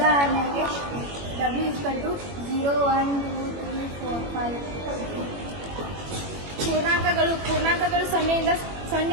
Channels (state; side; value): late; left; 21 ms